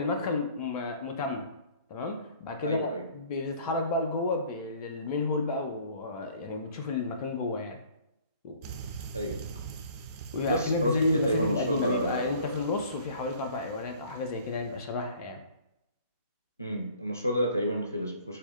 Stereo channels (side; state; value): both; inverted; correlation -0.53